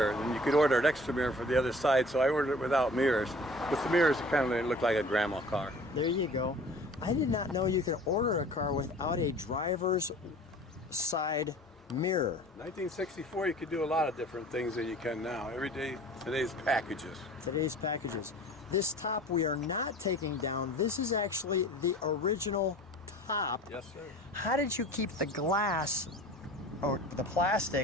And you could order an extra mirror for the other side, so I ordered it without mirrors. With the mirrors, it kind of looked like a grandma car. There you go. I did not know you could order a car without a driver's side mirror. 1964, you could do a lot of different things than you can now. Every day, today's packages. Today's packages. This top we are not taking down. This is actually the original top. Yes, sir. How did you keep the glass or the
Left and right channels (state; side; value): normal; both; correlation 0.45